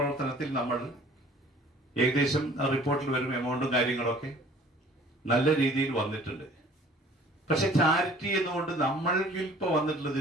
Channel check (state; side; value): normal; both; correlation 0.51